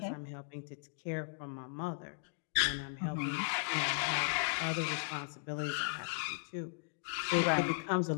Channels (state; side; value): silent; right; digital silence